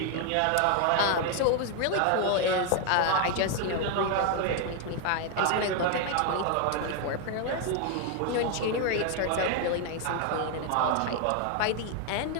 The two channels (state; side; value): different; both; correlation 0.01